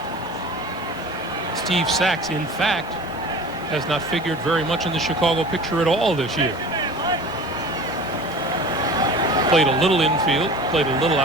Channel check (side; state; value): both; normal; correlation 0.39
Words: Steve Sachs, in fact, has not figured very much in the Chicago picture at all this year. Played a little infield, played a little